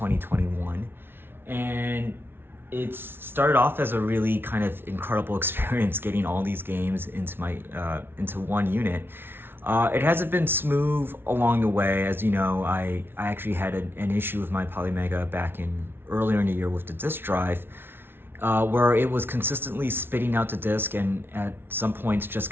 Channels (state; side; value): late; left; 0.11 ms